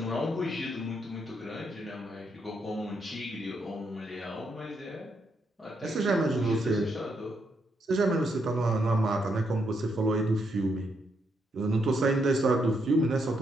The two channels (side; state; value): both; normal; correlation 0.78